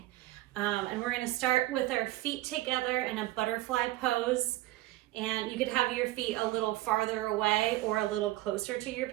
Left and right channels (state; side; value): quieter; left; 17.2 dB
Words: And we're gonna start with our feet together in a butterfly pose. And you could have your feet a little farther away or a little closer to your